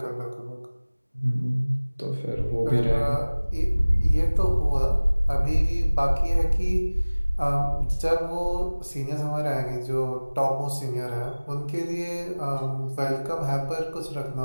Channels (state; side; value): inverted; both; correlation -1.00